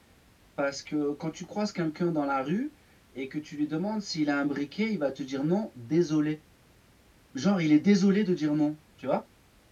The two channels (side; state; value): both; identical; correlation 1.00